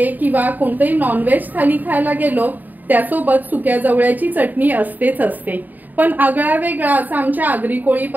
किंवा कोणतेही नॉनव्हेज थाली खायला गेलो त्यासोबत सुक्या जवळ्याची चटणी असतेच असते। पण आगळा वेगळा असा आमच्या आगरी कोळी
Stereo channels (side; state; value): left; late; 0.085 ms